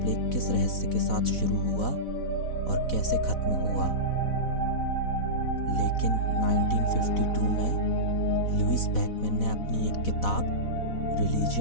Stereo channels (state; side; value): late; right; 4.1 ms